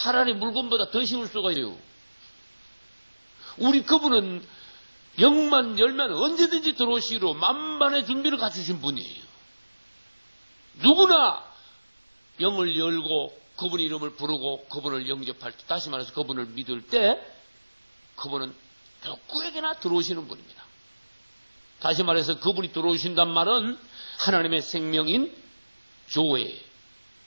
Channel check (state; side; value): inverted; both; correlation -1.00